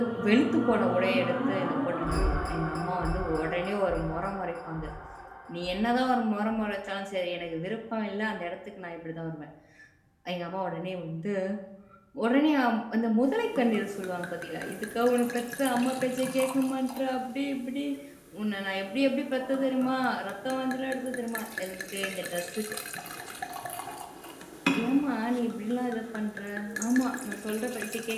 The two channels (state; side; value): identical; both; correlation 1.00